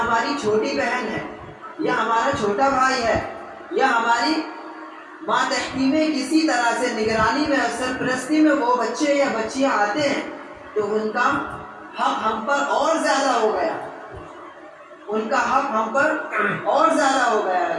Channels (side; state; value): both; identical; correlation 1.00